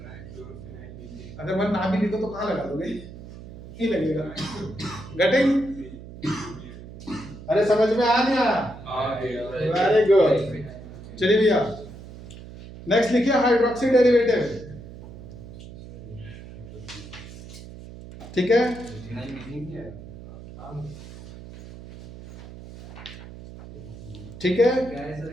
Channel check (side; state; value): right; noise; hum, 15 dB below the sound